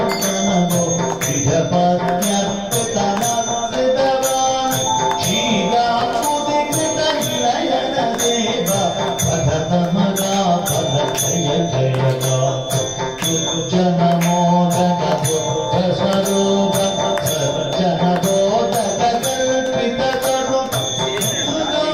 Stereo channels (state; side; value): identical; both; correlation 1.00